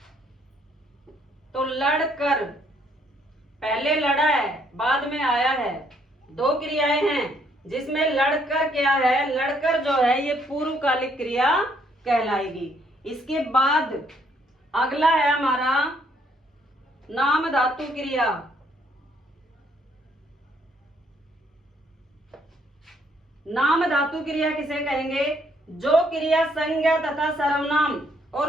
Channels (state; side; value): normal; both; correlation 0.68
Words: तो लड़कर पहले लड़ा है बाद में आया है, दो क्रियाएं हैं जिसमें लड़कर क्या है? लड़कर जो है ये पूर्वकालिक क्रिया कहलाएगी। इसके बाद अगला है हमारा नाम धातु क्रिया। नाम धातु क्रिया किसे कहेंगे? जो क्रिया संज्ञा तथा सर्वनाम